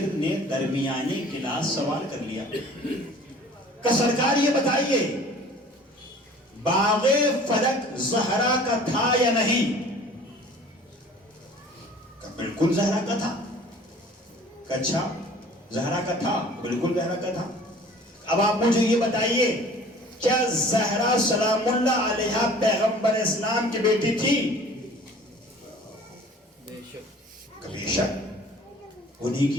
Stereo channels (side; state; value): both; normal; correlation 0.48